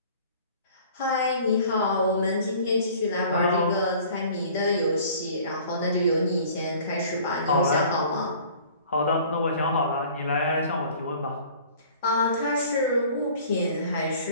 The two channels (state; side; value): inverted; both; correlation -0.50